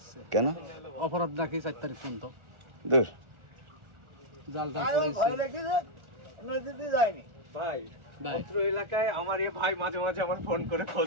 কেন? অপরাধ নাকি 4 তারিখ পর্যন্ত। দূর। জাল পড়েছে। নদীতে যায়নি ভাই। অত্র এলাকায় আমার এ ভাই মাঝে মাঝে আমার ফোন করে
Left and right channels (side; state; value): left; late; 1.4 ms